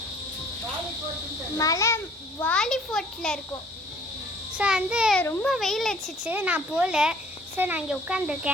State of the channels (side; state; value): both; normal; correlation 0.55